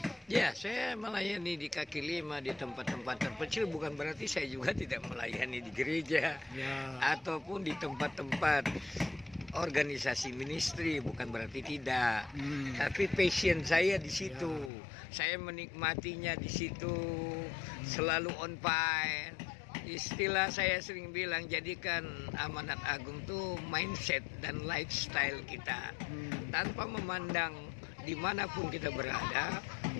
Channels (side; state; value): right; drops out; at 14.7 s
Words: Ya, saya melayani di kaki lima, di tempat-tempat terpencil, bukan berarti saya juga tidak melayani di gereja, Ya. ataupun di tempat-tempat organisasi ministry, bukan berarti tidak. Tapi passion saya di situ. Saya menikmatinya di situ, selalu on fire. Istilah saya sering bilang, jadikan amanat agung tuh mindset dan lifestyle kita. Tanpa memandang dimanapun kita berada,